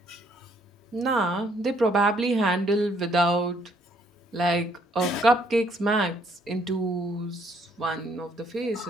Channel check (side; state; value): both; normal; correlation 0.67